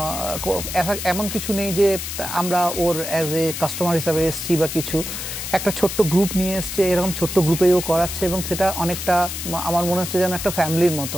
এমন কিছু নেই যে আমরা ওর অ্যাজ এ কাস্টমার হিসাবে এসছি বা কিছু, একটা ছোট্ট গ্রুপ নিয়ে এসছে, এরকম ছোট্ট গ্রুপেও করাচ্ছে, এবং সেটা অনেকটা আমার মনে হচ্ছে যেন একটা ফ্যামিলির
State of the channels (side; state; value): left; noise; hiss, 6 dB below the sound